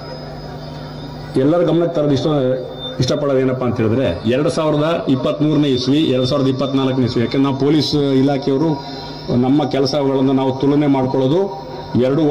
ಎಲ್ಲರ ಗಮನಕ್ಕೆ ತರೋದು ಇಷ್ಟಪಡೋದು ಏನಪ್ಪ ಅಂತ ಹೇಳಿದ್ರೆ 2023ನೇ ಇಸ್ವಿ 2024ನೇ ಇಸ್ವಿ, ಯಾಕೆಂದ್ರೆ ನಾವು ಪೊಲೀಸ್ ಇಲಾಖೆಯವರು ನಮ್ಮ ಕೆಲಸಗಳನ್ನು ನಾವು ತುಲನೆ ಮಾಡ್ಕೊಳ್ಳೋದು 2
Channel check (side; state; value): both; identical; correlation 1.00